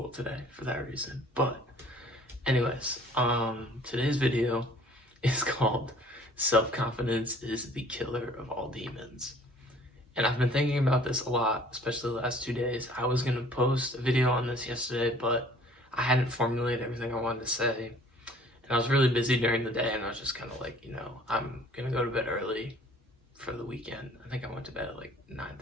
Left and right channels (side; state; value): both; normal; correlation 0.53